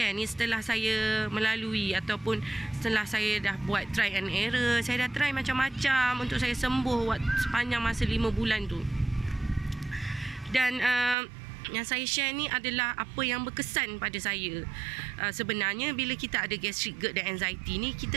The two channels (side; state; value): left; drops out; at 11.2 s